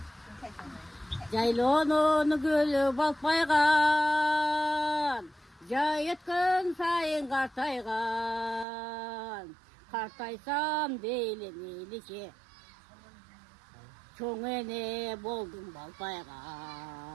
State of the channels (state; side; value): drops out; left; at 8.7 s